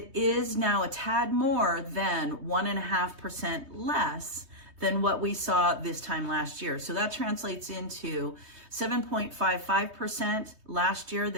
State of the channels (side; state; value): left; late; 3.2 ms